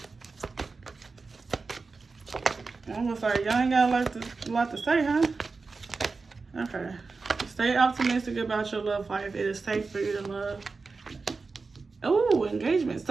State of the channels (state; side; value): quieter; left; 4.2 dB